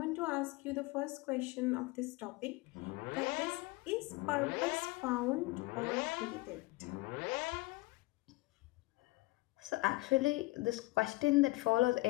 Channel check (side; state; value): right; quieter; 21.4 dB